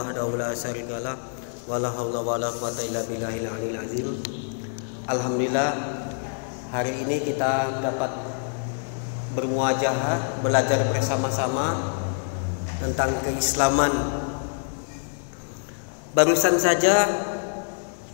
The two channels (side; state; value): right; silent; 61 dB below the other